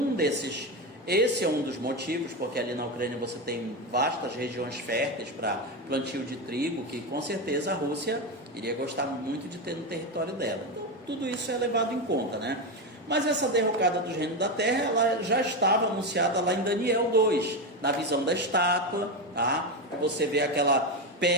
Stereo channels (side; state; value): both; normal; correlation 0.13